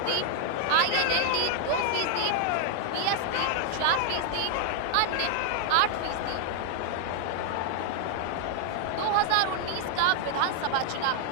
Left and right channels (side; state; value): both; different; correlation 0.00